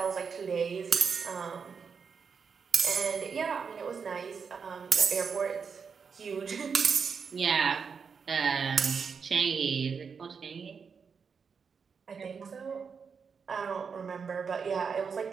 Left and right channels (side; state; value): left; quieter; 5.9 dB